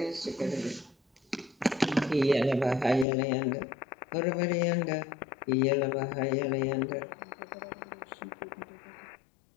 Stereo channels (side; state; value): right; drops out; at 3.1 s